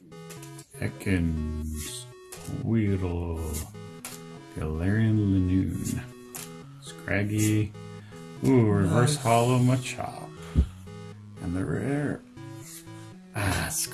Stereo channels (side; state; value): both; identical; correlation 1.00